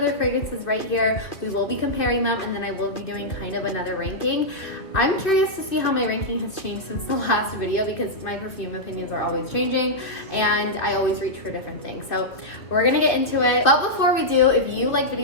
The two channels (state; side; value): late; right; 2.3 ms